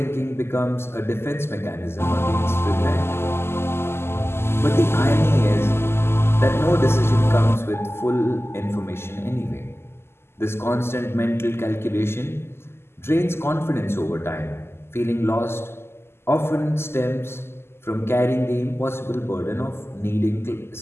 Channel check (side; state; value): right; late; 0.12 ms